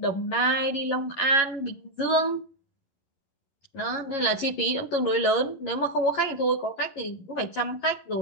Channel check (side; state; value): right; late; 11 ms